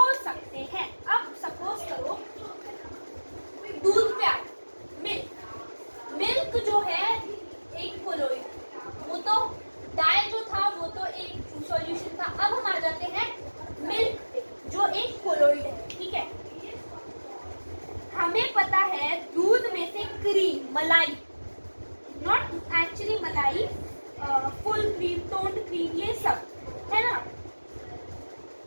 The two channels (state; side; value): inverted; both; correlation -1.00